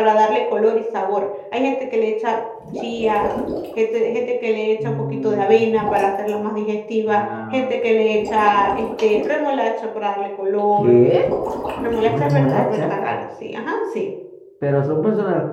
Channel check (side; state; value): both; identical; correlation 1.00